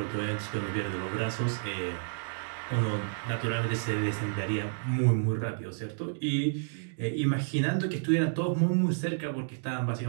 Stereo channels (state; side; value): silent; left; digital silence